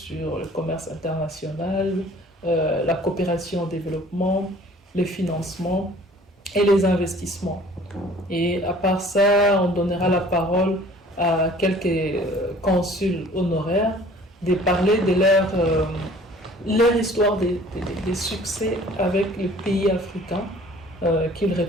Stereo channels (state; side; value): normal; both; correlation 0.51